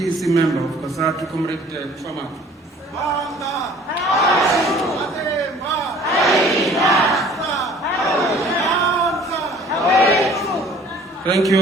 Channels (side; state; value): both; normal; correlation 0.52